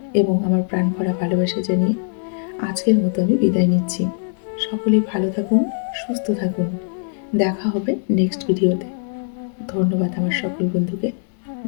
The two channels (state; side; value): silent; right; 65 dB below the other